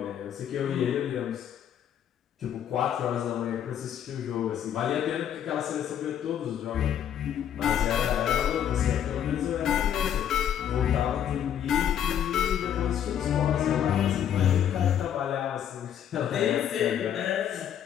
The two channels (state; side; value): quieter; right; 9.6 dB